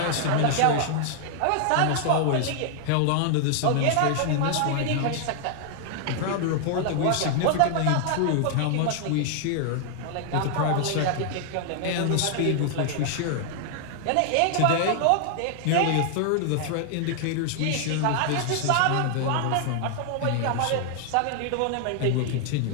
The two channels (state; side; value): different; both; correlation 0.00